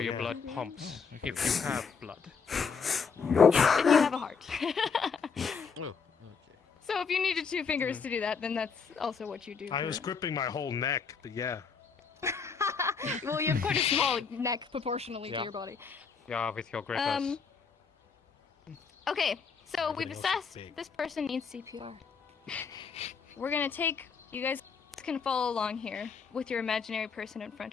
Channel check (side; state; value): right; quieter; 5.7 dB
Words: your blood pumps, if you have blood. If you have a heart. Oh, okay. So if you needed 2 fingers to do that, then that's also what you do. I was gripping my whole neck, but yeah. Well, you have quite a small neck proportionally to your body. Yeah, with your grippers. Okay, so we've assessed this person needs CPR. We're gonna take, you guys can follow along here with your imaginary person in